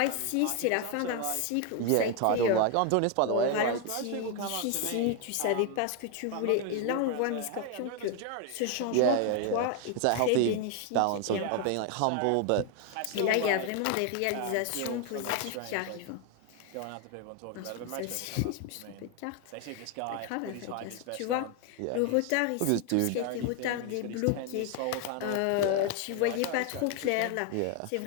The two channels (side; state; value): both; different; correlation 0.01